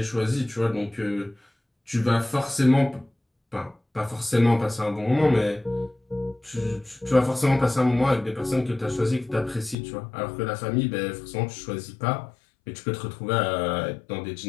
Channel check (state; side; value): drops out; right; at 9.8 s